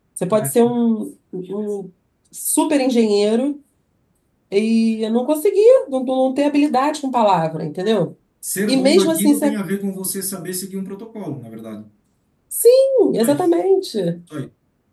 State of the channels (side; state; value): both; identical; correlation 1.00